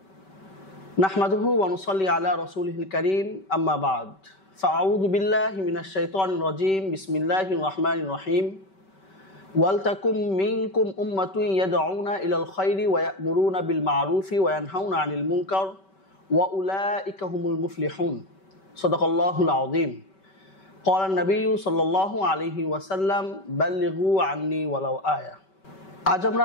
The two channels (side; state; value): right; late; 5.2 ms